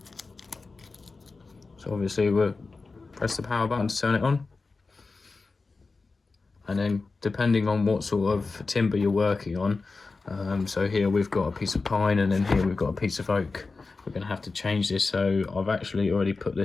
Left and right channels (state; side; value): quieter; right; 4.0 dB